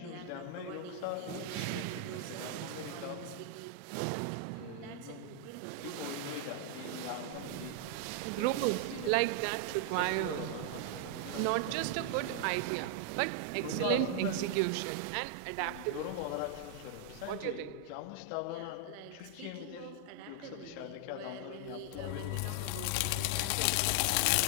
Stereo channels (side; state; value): both; different; correlation 0.00